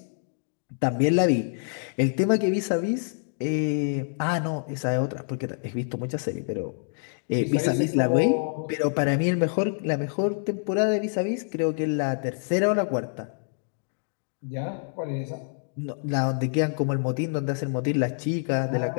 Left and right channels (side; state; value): right; silent; digital silence